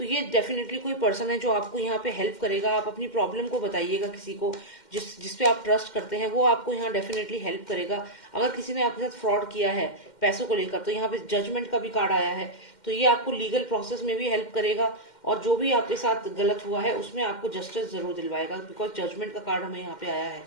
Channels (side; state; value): right; late; 2.1 ms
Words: ये डेफिनेटली कोई पर्सन है जो आपको यहाँ पे हेल्प करेगा। आप अपनी प्रॉब्लम को बताइएगा किसी को जिस पे आप ट्रस्ट करते हैं, वो आपको यहाँ डेफिनेटली हेल्प करेगा। अगर किसी ने आपके साथ फ्रॉड किया है पैसों को लेकर, तो यहाँ पे जजमेंट का भी कार्ड आया है, तो ये आपको लीगल प्रोसेस में भी हेल्प करेगा, और जो भी आपके साथ गलत हुआ है उसमें आपको जस्टिस जरूर दिलवाएगा, बिकॉज जजमेंट का कार्ड हमें यहाँ पे आया है।